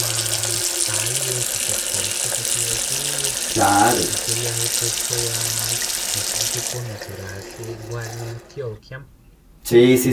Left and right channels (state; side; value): identical; both; correlation 1.00